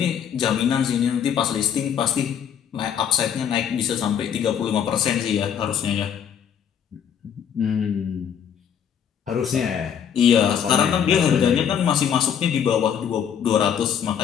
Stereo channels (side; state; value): right; quieter; 8.4 dB